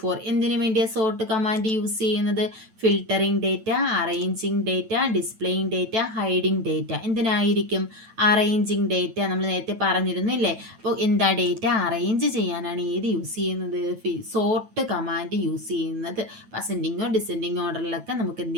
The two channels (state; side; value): late; left; 9.1 ms